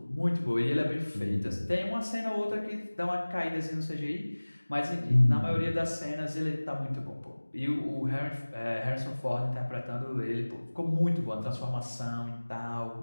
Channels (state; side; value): inverted; both; correlation -1.00